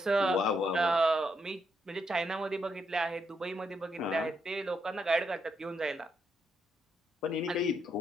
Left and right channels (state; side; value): normal; both; correlation 0.78